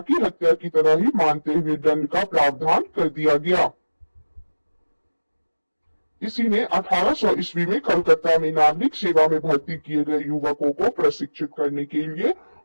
हत्या की तरह ही मानते हुए दंड का प्रावधान कर दिया गया। इसी ने 1800 ईस्वी में कलकत्ता में नागरिक सेवा में भर्ती किए गए युवकों को प्रशिक्षित करने के लिए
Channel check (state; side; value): inverted; both; correlation -1.00